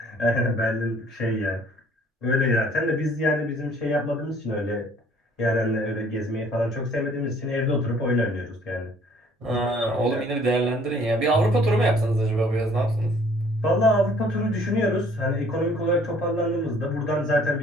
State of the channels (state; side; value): normal; both; correlation 0.58